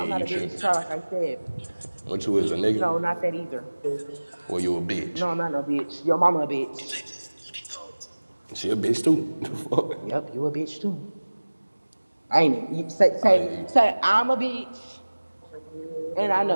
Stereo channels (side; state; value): both; inverted; correlation -1.00